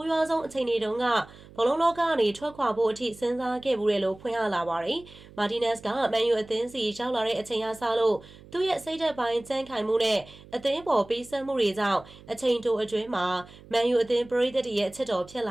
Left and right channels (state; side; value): noise; right; hum, 21 dB below the sound